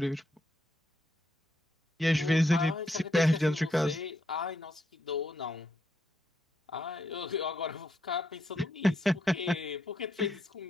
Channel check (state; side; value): normal; both; correlation 0.77